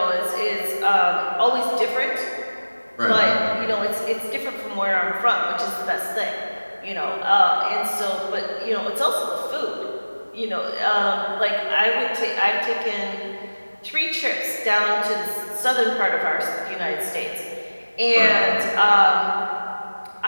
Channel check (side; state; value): both; inverted; correlation -1.00